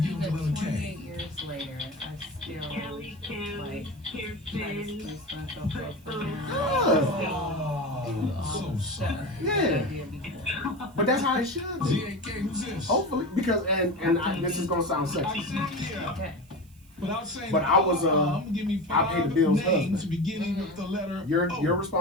with even the letter K. 28 years later, I still, Kelly, like, try to Kirsten, spruce myself up for him. Oh, so sorry. Yeah, but that's how it should be. ZAK, who's this? Hopefully, because this is gonna sound sexy. Okay. Without saying But I was, I'm gonna give me I paid the 5 bills names husband. beginning with the letter Your O.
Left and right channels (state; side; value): noise; right; hiss, 29 dB below the sound